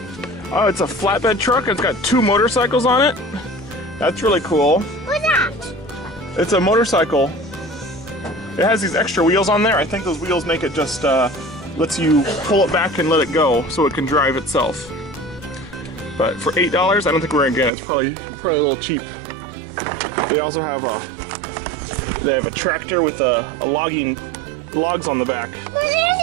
Oh, it's a flatbed truck. It's got 2 motorcycles on it. That's really cool. What's that? It's a motorcycle. It has these extra wheels on there. I think those wheels make it just lets you pull it back and let it go so it can drive itself. But for $8, I don't think we're gonna get it. It's probably a little cheap. They also have a tractor with logs on the back.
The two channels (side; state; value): left; drops out; at 17.7 s